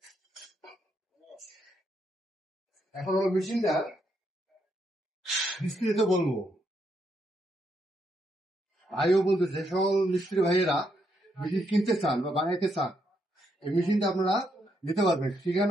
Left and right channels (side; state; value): both; normal; correlation 0.77